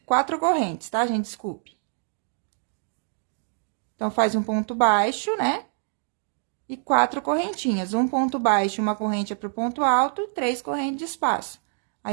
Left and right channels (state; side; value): silent; left; digital silence